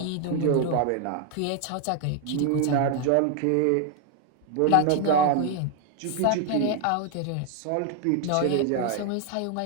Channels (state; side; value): different; both; correlation 0.00